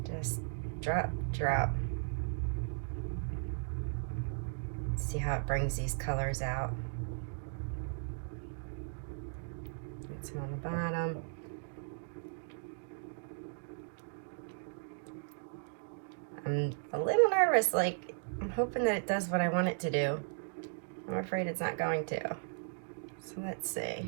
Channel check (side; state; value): left; silent; digital silence